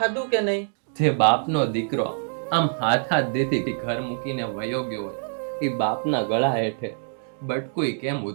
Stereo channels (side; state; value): left; silent; 62 dB below the other